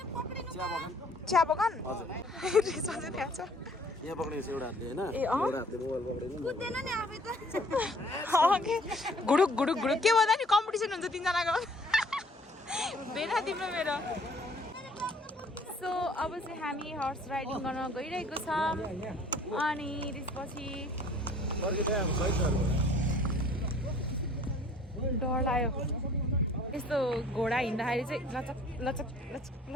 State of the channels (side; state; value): both; normal; correlation 0.55